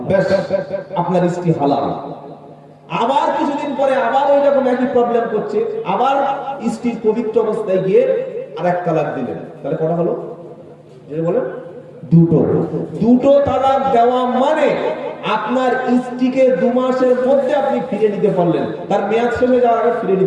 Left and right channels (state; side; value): identical; both; correlation 1.00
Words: ব্যাস, আপনার স্ত্রী হালাল। আবার কিছুদিন পরে আবার ওই রকম একই প্রবলেম করছে, আবার স্ত্রীর পবিত্র অবস্থায় গিয়ে আর 1 তালাক দিলেন, তাহলে কটা হলো? যেটা বলেন 2টো তালাক দেওয়া মানে আপনার স্ত্রীকে 2 মাসের মধ্যে আপনি ফিরে নিতে পারলেন, তার মেয়াদ শেষ হয়ে যাওয়ার আগে ফিরে